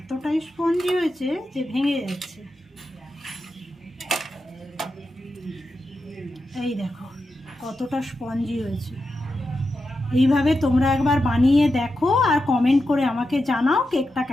স্পঞ্জি হয়েছে যে ভেঙে যাচ্ছে। এই দেখো কতটা স্পঞ্জি হয়েছে। এইভাবে তোমরা একবার বানিয়ে দেখো আর কমেন্ট করে আমাকে জানাও কেকটা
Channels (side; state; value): both; normal; correlation 0.89